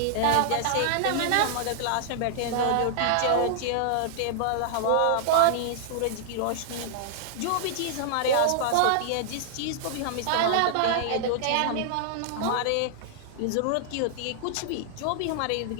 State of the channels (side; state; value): both; different; correlation -0.01